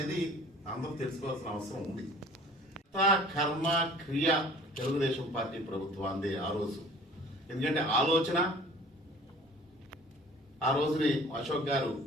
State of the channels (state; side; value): normal; both; correlation 0.48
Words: అందరూ తెలుసుకోవాల్సిన అవసరం ఉంది. కర్మ క్రియ తెలుగుదేశం పార్టీ ప్రభుత్వాన్ని ఆ రోజు, ఎందుకంటే ఆలోచన ఆ రోజుని అశోక్ గారు